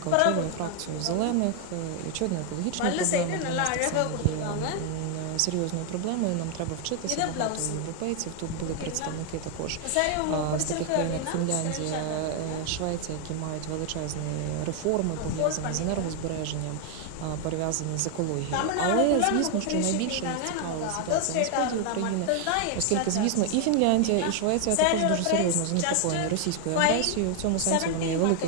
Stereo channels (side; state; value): both; different; correlation 0.00